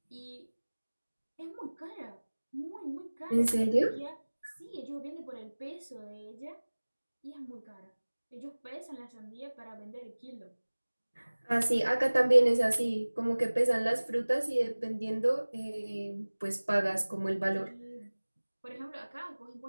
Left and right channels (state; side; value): inverted; both; correlation -1.00